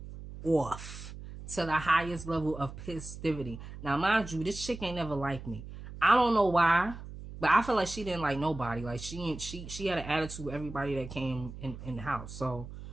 off to the highest level of pissivity. Now, mind you, this chick ain't never liked me. I don't know why, but I feel like she didn't like nobody. Like, she had an attitude with everybody that came in the house. So,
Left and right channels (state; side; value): noise; right; hum, 12 dB below the sound